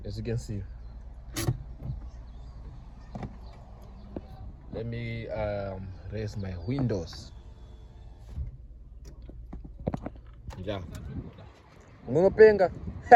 as you can see. Let me raise my windows. Yeah. Ngunopenga.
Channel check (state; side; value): identical; both; correlation 1.00